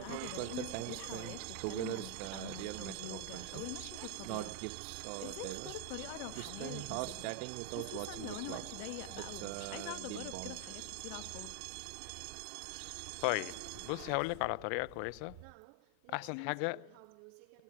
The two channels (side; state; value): both; different; correlation 0.00